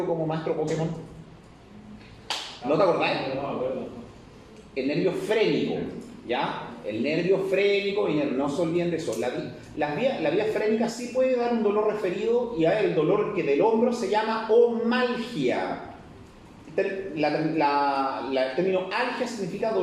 como maestro Pokémon. ¿No te acordáis? El nervio frénico, ¿ya? El nervio frénico, y no se olviden de eso. La vía frénica sí puede dar un dolor referido, y el dolor que del hombro se llama omalgia. El término algia significa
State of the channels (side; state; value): both; identical; correlation 1.00